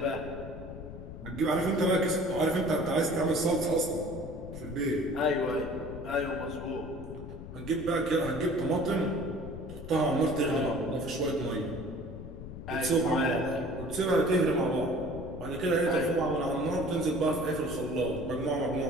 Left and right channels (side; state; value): left; noise; rumble, 11 dB below the sound